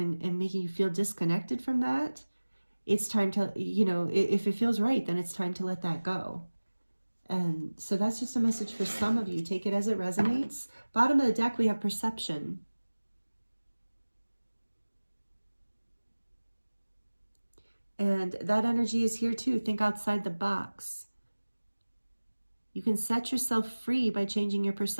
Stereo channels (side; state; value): both; inverted; correlation -1.00